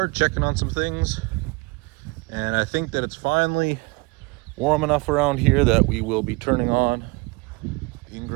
checking on some things, and I think that it's finally warm enough around here that we will be turning on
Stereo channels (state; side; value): quieter; left; 26.3 dB